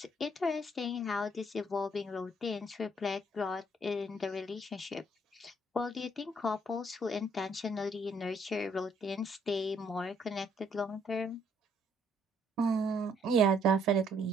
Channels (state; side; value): normal; both; correlation 0.67